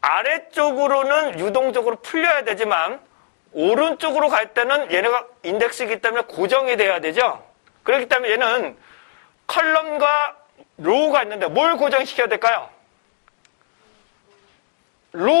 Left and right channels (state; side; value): silent; right; digital silence